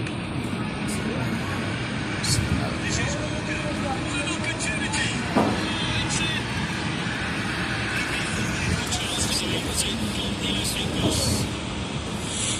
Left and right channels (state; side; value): identical; both; correlation 1.00